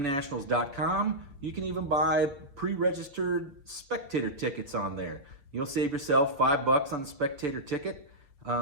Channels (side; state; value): left; late; 7.0 ms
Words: You can even buy pre-registered spectator tickets on there. You'll save yourself $5 on the spectator ticket.